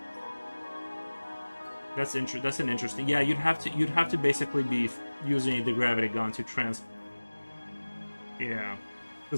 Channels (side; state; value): both; inverted; correlation -1.00